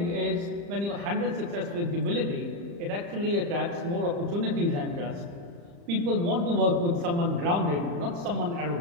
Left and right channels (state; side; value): late; left; 35 ms